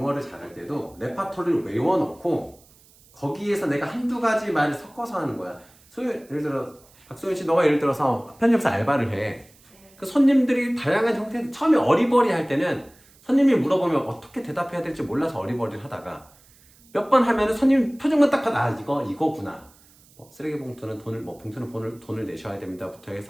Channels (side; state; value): right; noise; hiss, 28 dB below the sound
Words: 잘할 때도 레파토리를 외워놓고 거기에서 내가 한두 가지 말을 섞어서 하는 거야. 예를 들어 박소연 씨, 너가 예를 들어서 편집사 알바를 해. 그 손님들이 다양한 형태, 처음에 어리버리 할 때는 손님이 물어보면 어떻게 대답해야 될지 몰라서 어리버리를 하다가 몇 번 하면은 손님 표정만 딱 봐도 이거구나. 쓰레기 봉투는 봉투는 돈을 내셔야 됩니다부터